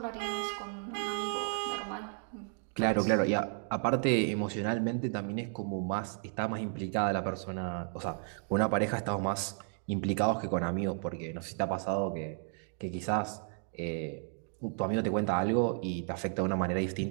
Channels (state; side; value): silent; left; 56 dB below the other